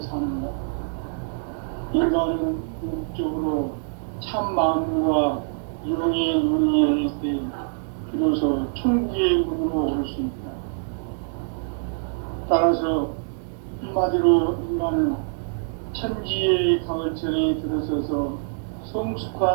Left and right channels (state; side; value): silent; left; digital silence